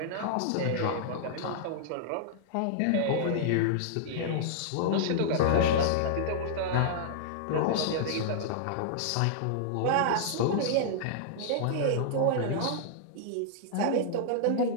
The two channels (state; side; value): different; both; correlation -0.01